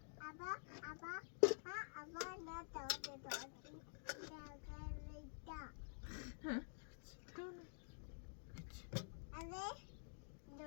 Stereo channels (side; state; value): right; silent; digital silence